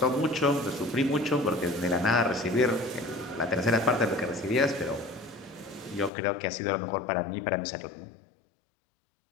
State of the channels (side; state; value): right; drops out; at 6.1 s